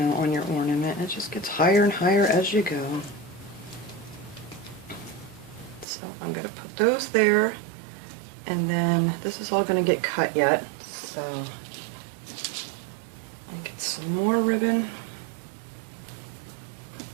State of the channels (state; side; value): drops out; left; at 5.9 s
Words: on your ornament. It just gets higher and higher as you go. So I'm going to put those there, and then this is all going to get cut yet, so I'll get some more ribbon.